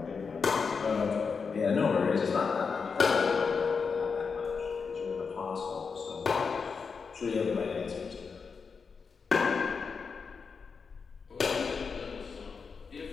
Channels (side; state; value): right; quieter; 5.4 dB